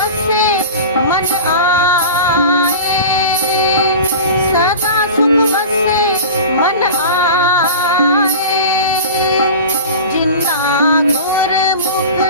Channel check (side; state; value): both; inverted; correlation -0.33